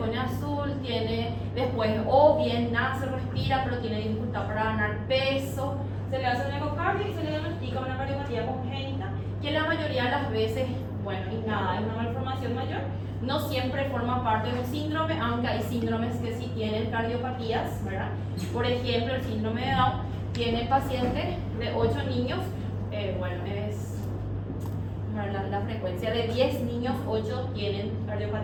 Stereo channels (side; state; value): both; identical; correlation 1.00